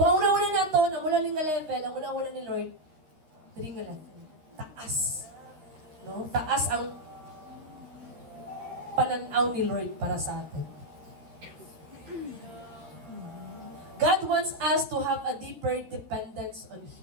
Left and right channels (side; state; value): left; late; 13 ms